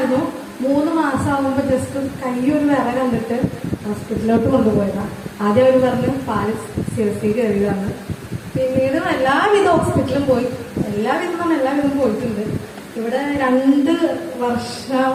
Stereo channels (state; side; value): identical; both; correlation 1.00